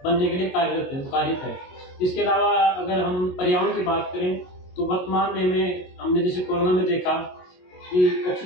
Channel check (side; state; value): right; late; 22 ms